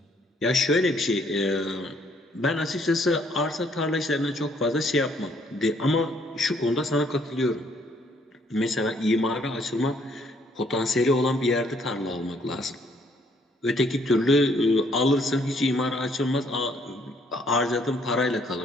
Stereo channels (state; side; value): normal; both; correlation 0.66